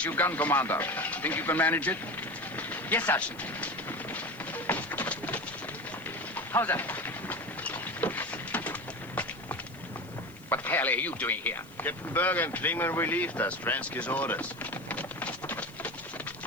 you gun commander. Think you can manage it? Yes, Sergeant. How's that? What the hell are you doing here? Captain Berger and Klingman relieved us. Fransky's orders.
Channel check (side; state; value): left; noise; hiss, 24 dB below the sound